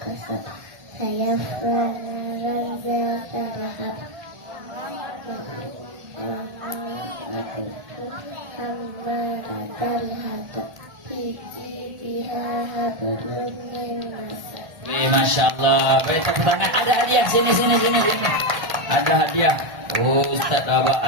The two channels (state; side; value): late; left; 1.8 ms